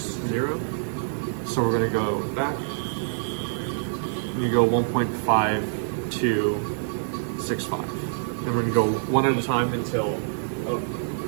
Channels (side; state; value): left; silent; 61 dB below the other